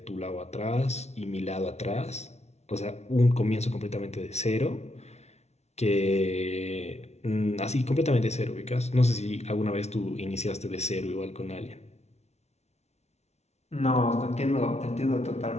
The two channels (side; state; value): right; late; 0.31 ms